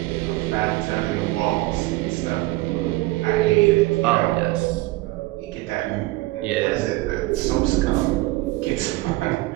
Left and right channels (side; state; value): left; quieter; 20.1 dB